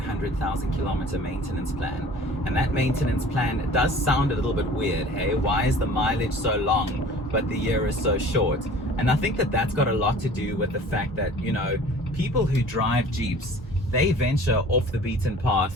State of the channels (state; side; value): normal; both; correlation 0.46